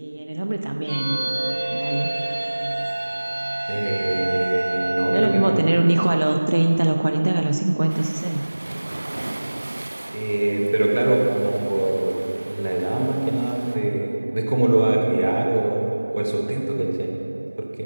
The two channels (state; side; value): inverted; both; correlation -1.00